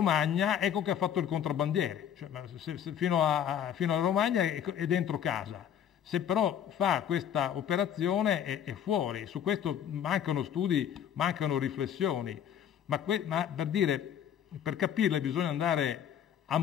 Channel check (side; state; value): right; quieter; 9.4 dB